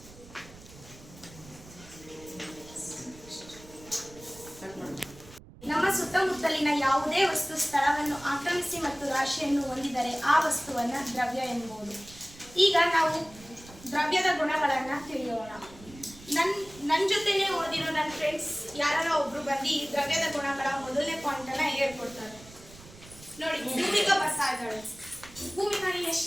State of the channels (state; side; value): noise; right; rumble, 20 dB below the sound